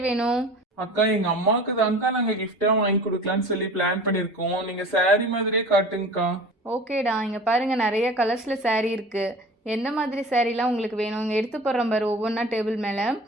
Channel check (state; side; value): normal; both; correlation 0.40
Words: வேணும்? அக்கா எங்க அம்மாவுக்கு தான்க்கா நாங்க கிஃப்டா வாங்கி கொடுக்கலாம்னு சொல்லி பிளான் பண்ணிருக்கோம். நீங்க saree மாதிரியே காட்டுங்கக்கா. ஓகேடா, இங்கே பாருங்கள், நிறைய கலர்ஸில் saree இருக்குது. எந்த மாதிரி சாரீலாம் உங்களுக்கு வேணும்? இங்கே எடுத்து போடுறோம் பாரு ஒவ்வொன்றா டேபிள் மேலே.